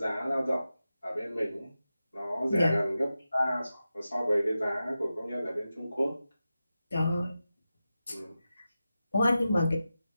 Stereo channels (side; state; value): both; inverted; correlation -0.93